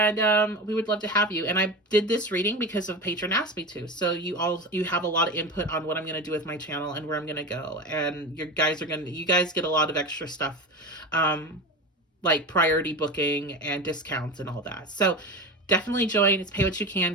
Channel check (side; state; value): both; normal; correlation 0.25